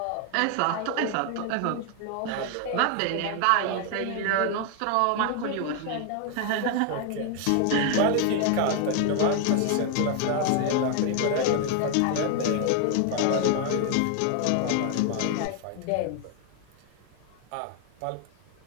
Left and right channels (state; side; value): different; both; correlation 0.00